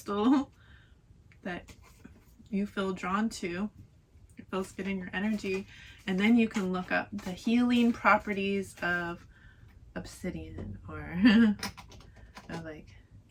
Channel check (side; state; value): both; identical; correlation 1.00